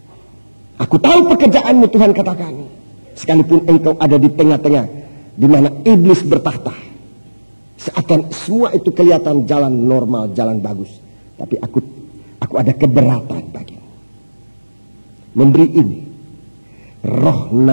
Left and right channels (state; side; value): inverted; both; correlation -1.00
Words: Aku tahu pekerjaanmu, Tuhan katakan. Sekalipun engkau ada di tengah-tengah di mana iblis bertahta, seakan semua itu kelihatan jalan normal, jalan bagus, tapi aku ada keberatan bagimu. Memberi ini, roh